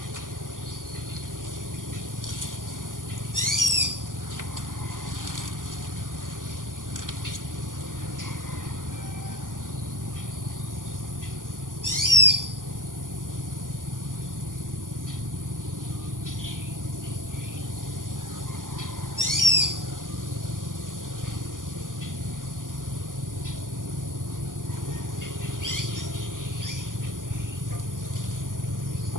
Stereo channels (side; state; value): left; late; 0.88 ms